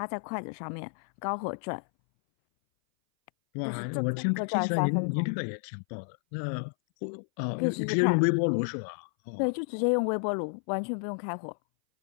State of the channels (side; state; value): right; silent; 58 dB below the other